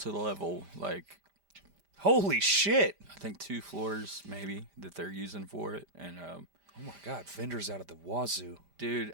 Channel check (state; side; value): late; left; 5.0 ms